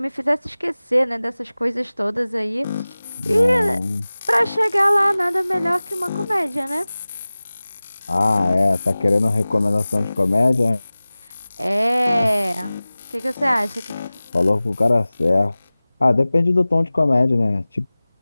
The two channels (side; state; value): both; inverted; correlation -0.98